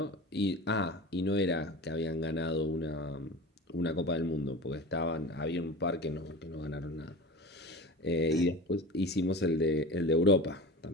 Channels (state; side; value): normal; both; correlation 0.33